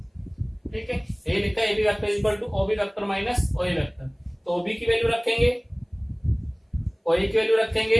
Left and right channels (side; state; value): both; identical; correlation 1.00